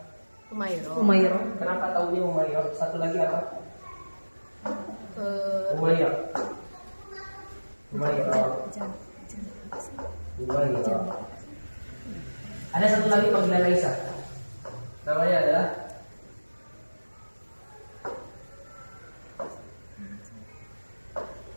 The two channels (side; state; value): both; inverted; correlation -1.00